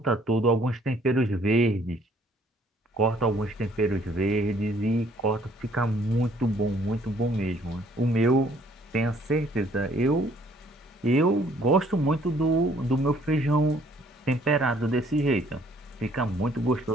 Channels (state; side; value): normal; both; correlation 0.62